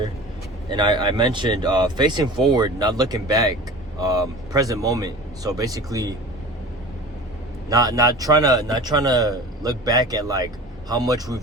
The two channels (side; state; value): both; normal; correlation 0.38